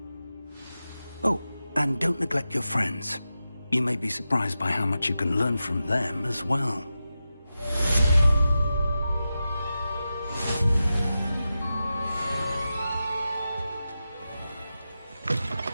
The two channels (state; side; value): inverted; both; correlation -0.92